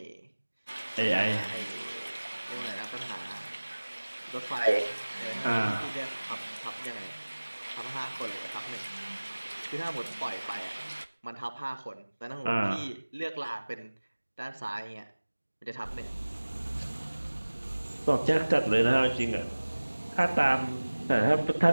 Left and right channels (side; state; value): both; inverted; correlation -1.00